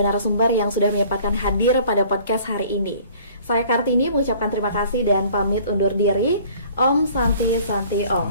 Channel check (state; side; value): inverted; both; correlation -0.53